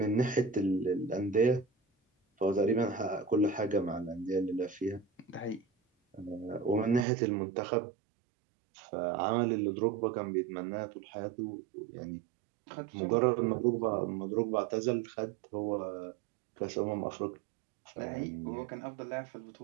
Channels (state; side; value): drops out; left; at 7.1 s